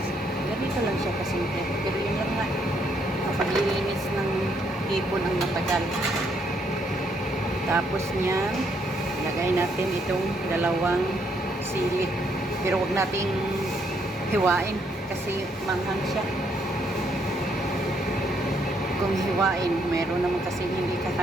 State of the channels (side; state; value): both; normal; correlation 0.72